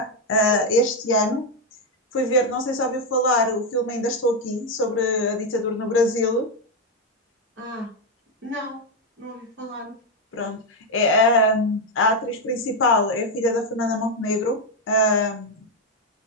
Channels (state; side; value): normal; both; correlation 0.05